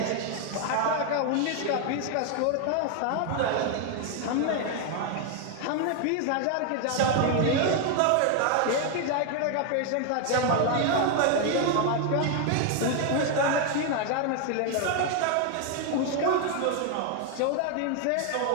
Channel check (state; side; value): different; both; correlation 0.01